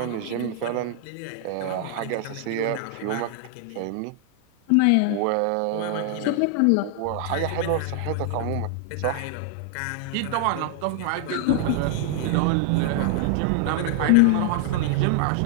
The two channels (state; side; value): different; both; correlation 0.00